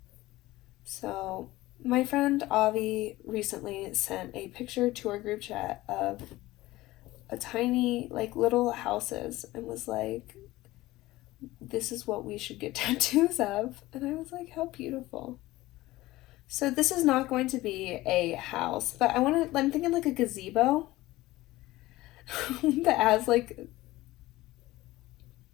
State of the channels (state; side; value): quieter; right; 18.1 dB